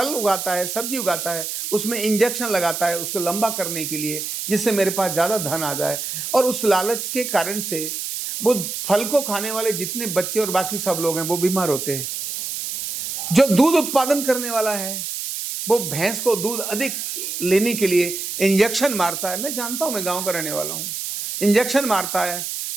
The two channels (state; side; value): noise; right; hiss, 5 dB below the sound